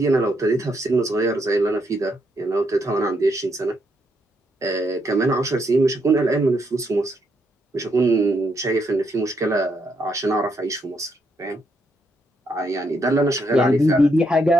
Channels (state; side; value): normal; both; correlation 0.77